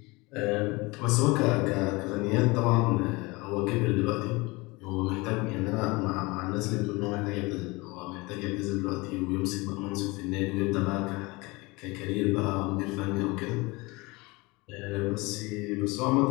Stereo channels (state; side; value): quieter; right; 24.3 dB